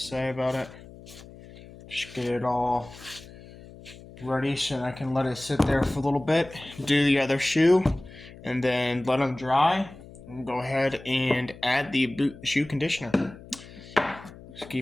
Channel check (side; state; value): left; noise; hum, 18 dB below the sound